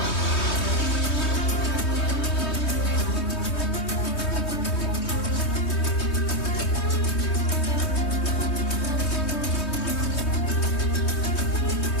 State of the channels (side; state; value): right; late; 3.2 ms